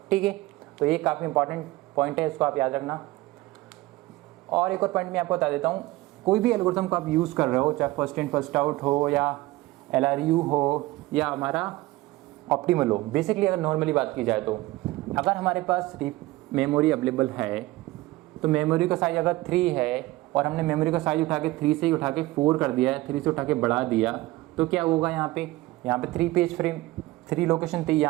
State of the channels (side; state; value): left; quieter; 18.9 dB